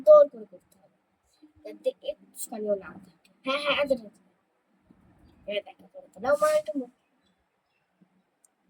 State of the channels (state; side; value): identical; both; correlation 1.00